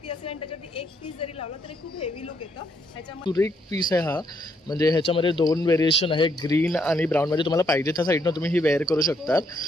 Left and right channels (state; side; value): normal; both; correlation 0.74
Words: असेल आणि त्याच्यावरती एक पीस जरी लावला तरी खूप हेवी लुक येतं. ह्याच्यामध्ये सुरेख पीस आहे हा. म्हणजे ह्याच्यामध्ये 2 व्हेरिएशन आहे, ग्रीन आणि ब्राऊन. म्हणजे तुम्हाला पाहिजे त्या साईडनं तुम्ही ही वेअर करू शकतात